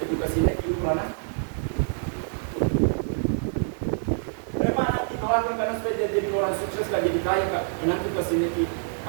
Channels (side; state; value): left; silent; digital silence